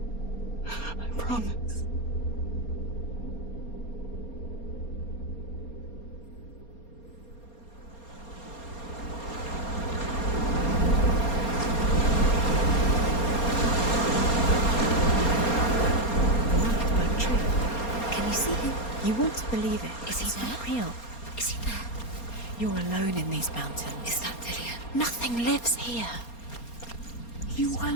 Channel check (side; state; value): right; late; 4.3 ms